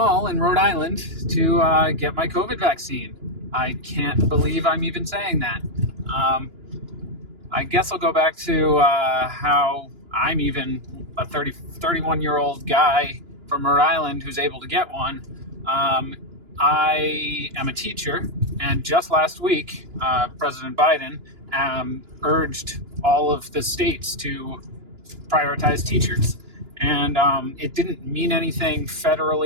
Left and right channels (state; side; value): late; left; 2.9 ms